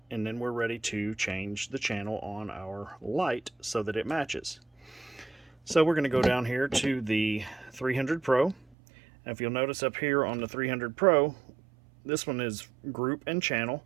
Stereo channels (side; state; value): left; drops out; at 8.8 s